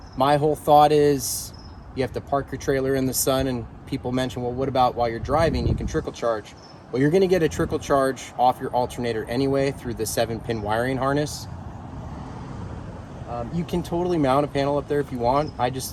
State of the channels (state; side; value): identical; both; correlation 1.00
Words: My whole thought is you have to park your trailer in the sun, and people mention, well, what about while you're driving? You can trickle charge. Well, you're gonna get a trickle charge off your alternator anyway through the 7-pin wiring harness. You can totally mount a panel up there if you want. I just